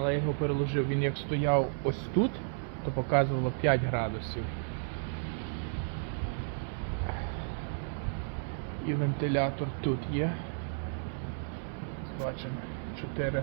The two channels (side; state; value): left; silent; digital silence